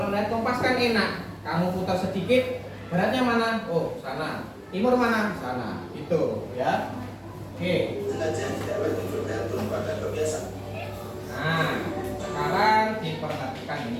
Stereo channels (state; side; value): identical; both; correlation 1.00